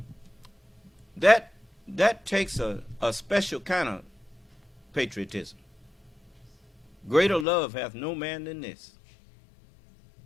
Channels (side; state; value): right; drops out; at 7.5 s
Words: That takes a special kind of patriotism. Greater love hath no man than this,